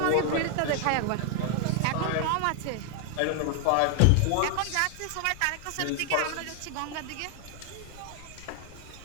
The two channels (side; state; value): both; different; correlation 0.00